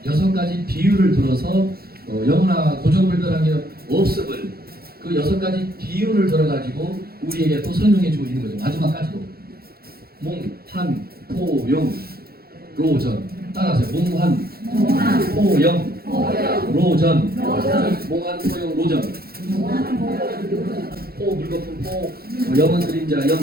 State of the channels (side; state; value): left; late; 0.44 ms